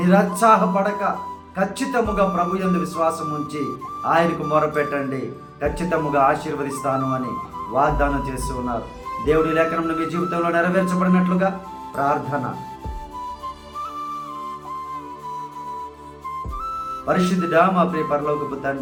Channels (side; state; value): both; identical; correlation 1.00